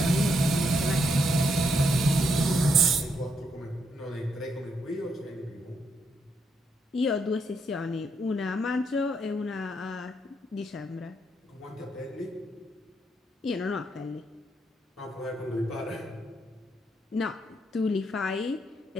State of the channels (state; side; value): normal; both; correlation 0.77